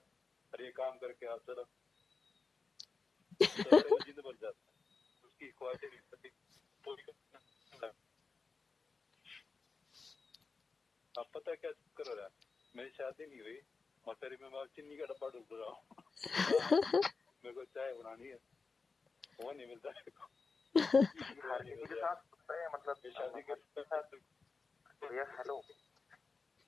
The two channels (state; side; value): quieter; right; 4.4 dB